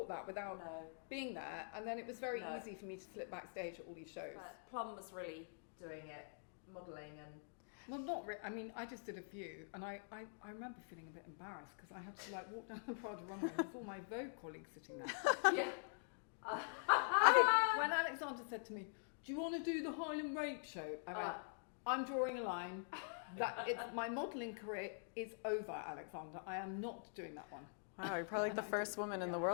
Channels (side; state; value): right; silent; digital silence